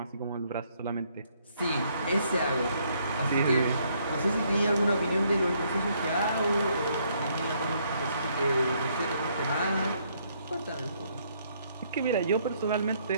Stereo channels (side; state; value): both; inverted; correlation -0.70